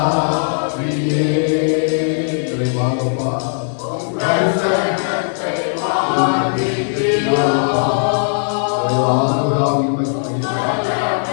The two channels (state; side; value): silent; right; 56 dB below the other